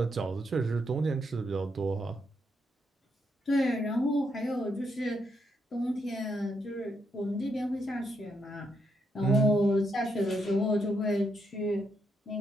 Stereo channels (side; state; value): both; normal; correlation 0.79